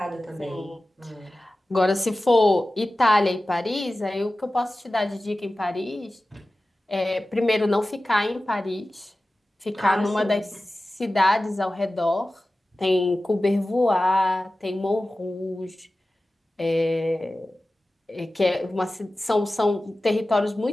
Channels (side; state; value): both; normal; correlation 0.96